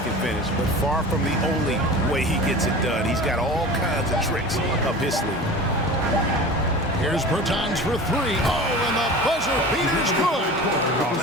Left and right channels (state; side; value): normal; both; correlation 0.35